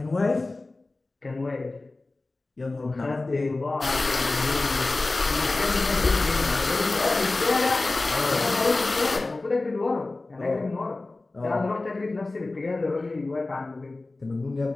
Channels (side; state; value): right; quieter; 3.2 dB